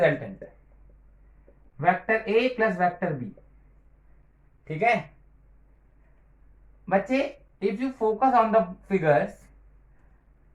vector A plus vector B. ठीक है बच्चे, if you focus on the figures,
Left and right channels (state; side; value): identical; both; correlation 1.00